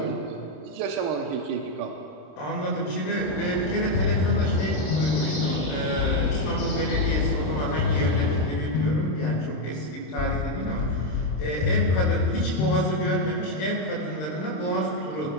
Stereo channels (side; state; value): right; late; 26 ms